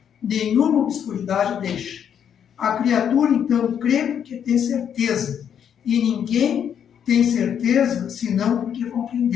nenhuma obscuridade deixa. A criatura, então, crê porque tem certeza, e ninguém tem certeza senão porque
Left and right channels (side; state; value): right; quieter; 8.6 dB